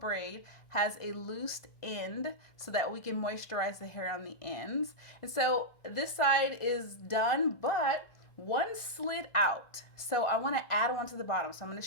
has a loosed end so that we can moisturize the hair on the ends. And so this side is done, but one slid out, so I want to add one to the bottom. So I'm going to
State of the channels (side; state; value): right; late; 1.4 ms